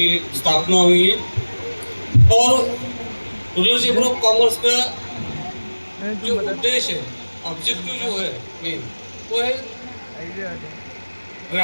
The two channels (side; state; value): both; inverted; correlation -1.00